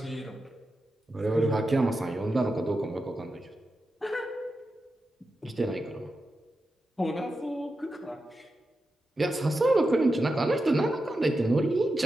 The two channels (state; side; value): normal; both; correlation 0.90